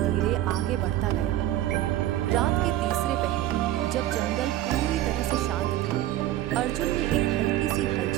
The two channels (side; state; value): left; quieter; 13.8 dB